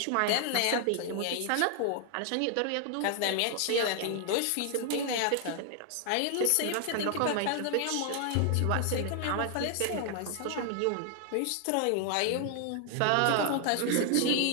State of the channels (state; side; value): different; both; correlation 0.00